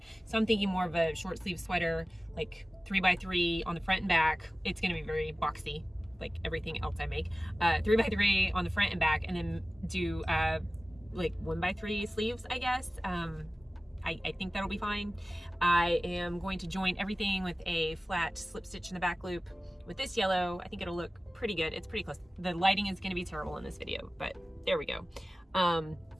So I'm thinking more of a short sleeve sweater, like 3x3 on the front and back. It's gonna be very boxy, like everything else I make. 3x3 on the front and back, and then do like 1x3 sleeves, I guess. I think that'll be fine. I am going to join everything with a flat slip stitch in the back loop with this yellow. I think it'll look pretty good. It's pretty close. The lighting is going to be terrible in this video, but there we go. And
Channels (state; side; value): normal; both; correlation 0.97